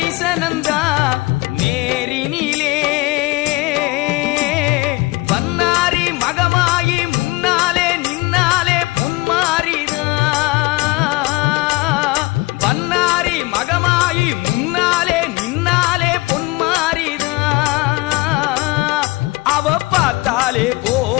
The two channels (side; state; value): right; quieter; 22.3 dB